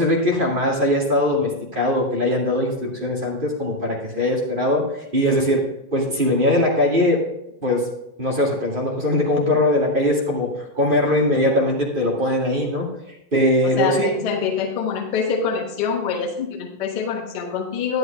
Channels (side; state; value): left; late; 2.5 ms